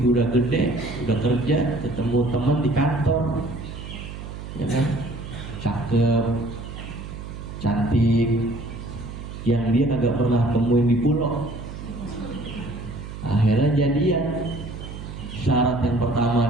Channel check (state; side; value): noise; right; hum, 10 dB below the sound